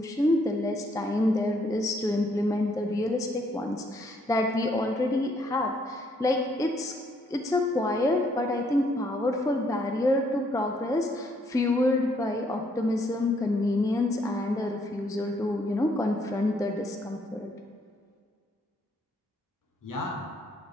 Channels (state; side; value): normal; both; correlation 0.69